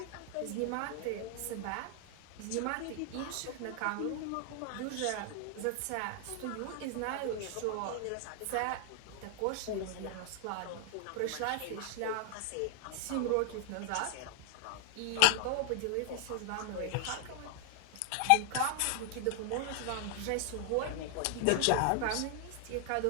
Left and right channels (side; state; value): both; different; correlation 0.00